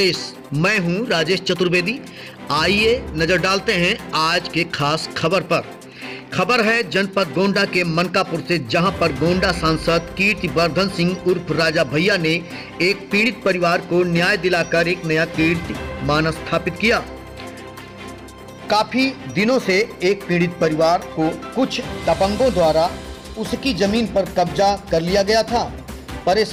मैं हूं राजेश चतुर्वेदी। आइए नजर डालते हैं आज के खास खबर पर। खबर है जनपद गोंडा के मनकापुर से, जहां पर गोंडा सांसद कीर्तिवर्धन सिंह उर्फ राजा भैया ने एक पीड़ित परिवार को न्याय दिलाकर एक नया कीर्तिमान स्थापित किया। काफी दिनों से एक पीड़ित परिवार को कुछ दबंगों द्वारा उसकी जमीन पर कब्जा कर लिया गया था।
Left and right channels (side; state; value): both; identical; correlation 1.00